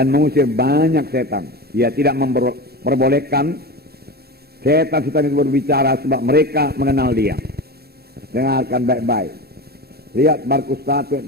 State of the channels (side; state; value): left; late; 0.46 ms